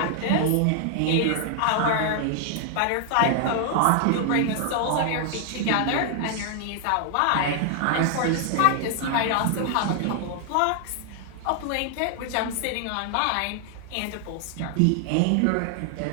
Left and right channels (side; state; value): both; different; correlation 0.00